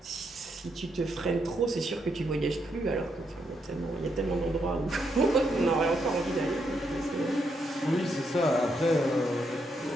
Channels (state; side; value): normal; both; correlation 0.79